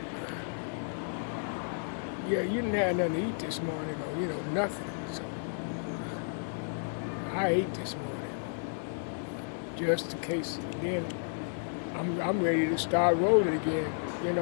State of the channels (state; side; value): silent; right; digital silence